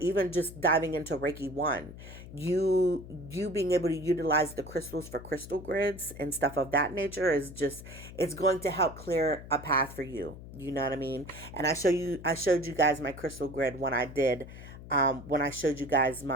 just diving into Reiki 1. You being able to utilize the crystals for crystal grids and stuff of that nature is just, it's going to help clear a path for you. You know what I mean? And I showed you guys my crystal grid when I showed you guys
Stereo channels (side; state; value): left; noise; hum, 14 dB below the sound